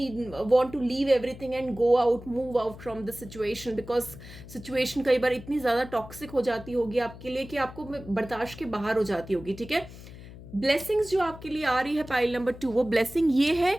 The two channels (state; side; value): noise; left; hum, 16 dB below the sound